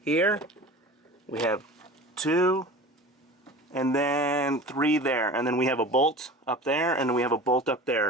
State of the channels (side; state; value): both; normal; correlation 0.37